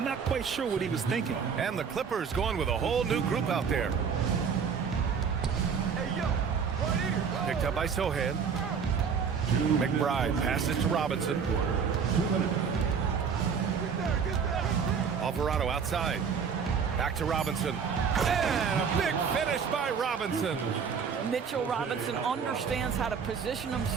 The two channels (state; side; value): quieter; left; 6.4 dB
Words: not quite sure what he was thinking. And the Clippers going with a whole new group out there. Picked up by Sohan. McBride passes to Robinson. Alvarado outside. Back to Robinson. And a big finish by Robinson. Mitchell Robinson understands how to position